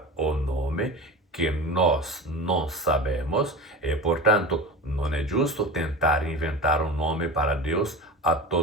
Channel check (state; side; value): normal; both; correlation 0.30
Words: o nome que nós não sabemos e, portanto, não é justo tentar inventar um nome para Deus a